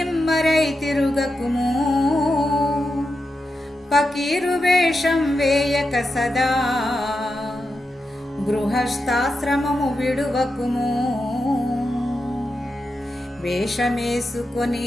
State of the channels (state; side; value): normal; both; correlation 0.88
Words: తిరుగకుము. పకీరు వేషం వేయక సదా, గృహస్థాశ్రమము విడువకుము. వేషమేసుకొని